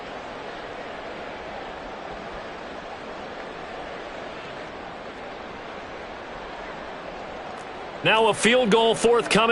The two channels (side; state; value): both; identical; correlation 1.00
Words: Now a field goal